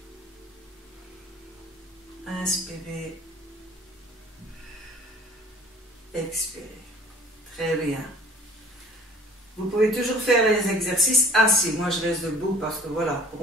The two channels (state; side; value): normal; both; correlation 0.49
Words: Inspirez. Expirez. Très bien. Vous pouvez toujours faire les exercices assis. Moi, je reste debout parce que voilà,